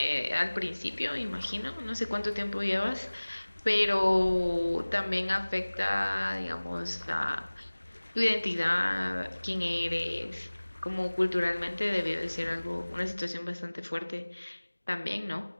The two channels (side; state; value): both; inverted; correlation -1.00